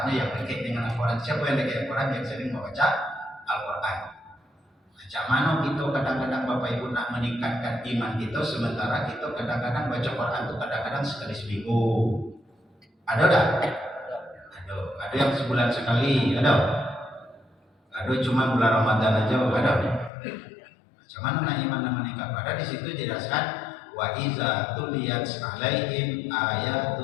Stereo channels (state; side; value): drops out; right; at 20.1 s